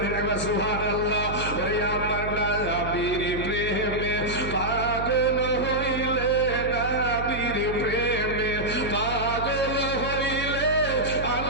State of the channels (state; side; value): noise; right; hum, 8 dB below the sound